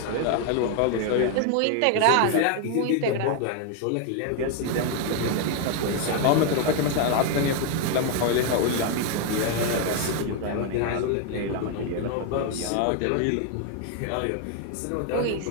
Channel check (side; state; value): both; different; correlation 0.01